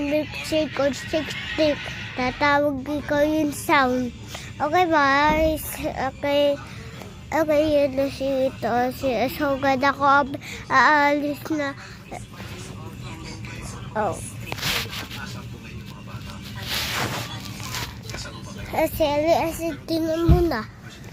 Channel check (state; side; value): identical; both; correlation 1.00